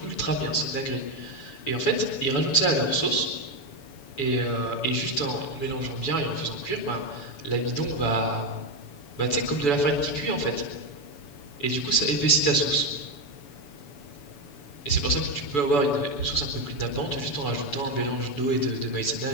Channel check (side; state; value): right; late; 7.0 ms